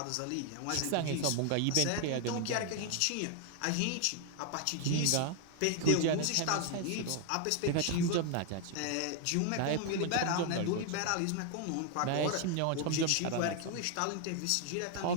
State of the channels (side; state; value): both; different; correlation 0.01